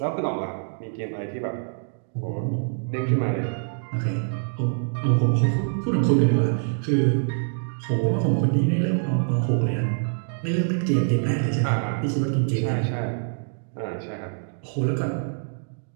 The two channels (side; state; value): left; silent; digital silence